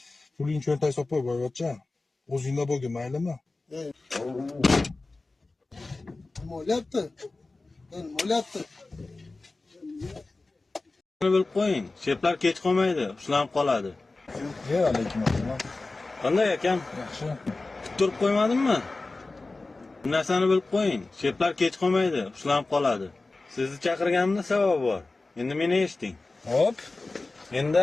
Puling cho'ntagga solib qo'y, boyvachcha. O'zingda bo'lgin, maylimi? Nima bo'lyapti? Nima bo'lyapti? bilib qo'ying. Sheplar kech qolmaydi, ushlanib qoladi. Alaykum assalom. Qanday ekan? Yaxshi. Turib qo'ymadimmi? Bu narsani bilib qo'ying. Sheplar kech qolmaydi, ushlanib qoladi. Sizni chaqirganimda sabab bor. Endi meni eshiting. Hop. Endi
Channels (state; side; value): quieter; right; 3.4 dB